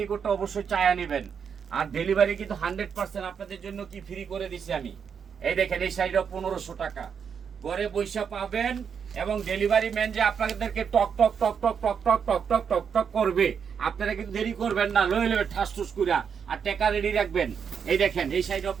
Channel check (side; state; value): left; quieter; 7.0 dB